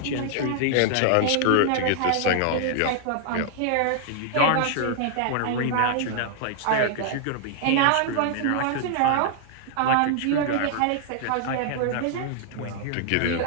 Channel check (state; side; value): different; both; correlation 0.00